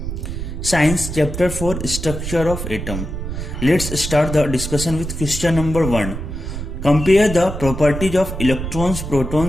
Science chapter 4 Structure of Atom. Let's start the discussion with question number 1. Compare the properties of electrons,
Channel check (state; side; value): noise; right; rumble, 6 dB below the sound